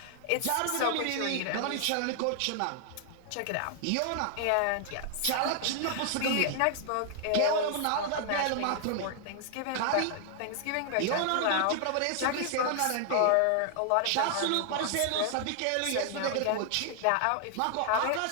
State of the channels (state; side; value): different; both; correlation 0.00